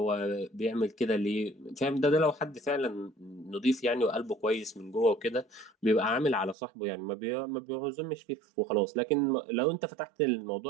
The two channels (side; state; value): left; drops out; at 6.6 s